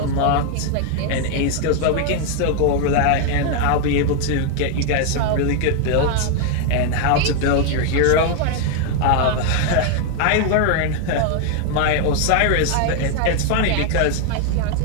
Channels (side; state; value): both; different; correlation 0.00